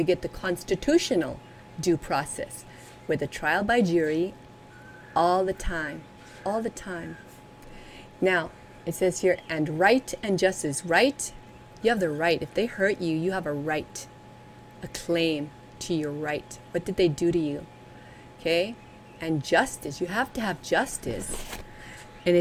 get the constitutional due process with a trial by jury all the time. Now, it says here, and right and justice. Right, you have the right. If they hurt you, you have a right, a claim to your right. What did they do to you? Okay? And justice, you have to have justice. And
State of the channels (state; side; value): identical; both; correlation 1.00